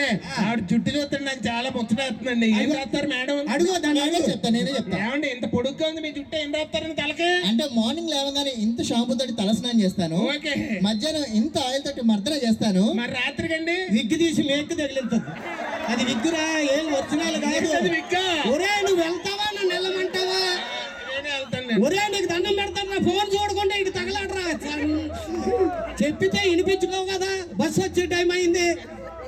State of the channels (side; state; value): both; identical; correlation 1.00